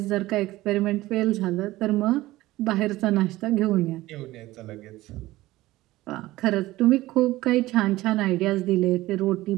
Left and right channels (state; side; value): quieter; left; 17.5 dB